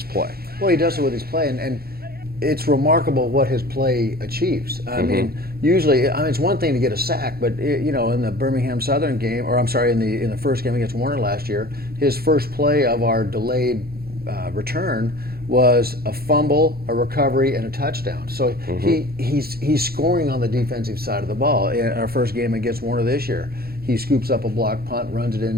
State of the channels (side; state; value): left; late; 0.45 ms